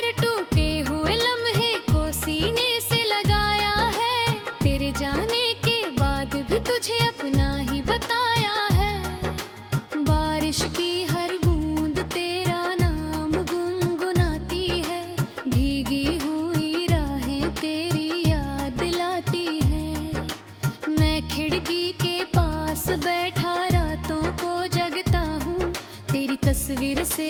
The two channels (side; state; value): both; identical; correlation 1.00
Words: टूटे हुए लम्हे को सीने से लगाया है, तेरे जाने के बाद भी तुझे अपना ही बताया है। बारिश की हर बूंद तेरा नाम गुनगुनाती है, भीगी हुई राहें तेरी खिड़की के पास बैठा रातों को जगता हूँ, तेरी तस्वीर से